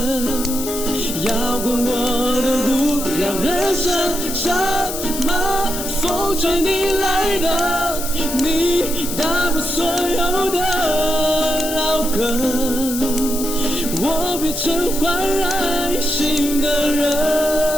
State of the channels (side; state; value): left; noise; hiss, 6 dB below the sound